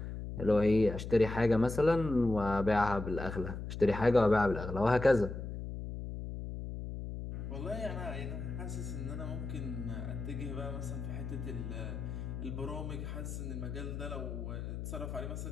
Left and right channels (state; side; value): noise; left; hum, 6 dB below the sound